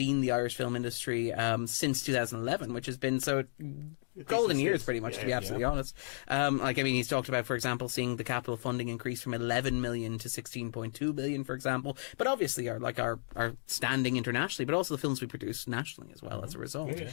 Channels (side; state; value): right; silent; digital silence